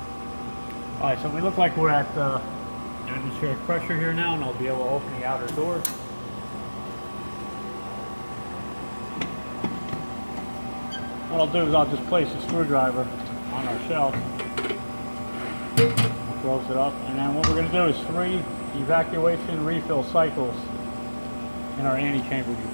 Alright, so we look like we're at atmospheric pressure here now, and I'll be able to open the outer doors. What I'll do is I'll just place a screwdriver on our shelf, I'll close it up, and then what we're going to do is 3 evacuation refill cycles in our Annie chamber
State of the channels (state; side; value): inverted; both; correlation -1.00